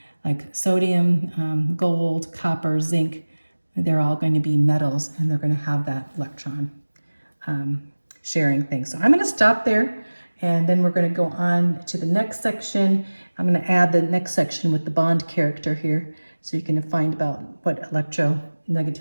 like sodium, gold, copper, zinc, they're all going to be metals, and they're going to have that electron sharing thing. So I'm going to stop there, and then we're going to go on to the next section. I'm going to add the next section with the bond character here, so you can find about what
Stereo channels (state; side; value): inverted; both; correlation -1.00